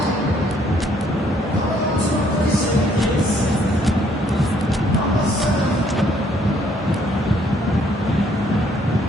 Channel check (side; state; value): both; normal; correlation 0.66